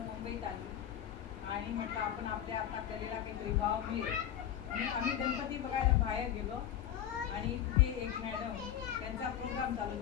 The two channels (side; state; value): right; quieter; 10.4 dB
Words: मुंबईत आली आणि म्हटलं आपण आपल्या आता कलेला काहीतरी वाव मिळेल म्हणून आम्ही गणपती बघायला बाहेर गेलो आणि तिथे एक मॅडम त्यांचा प्रोग्राम चालू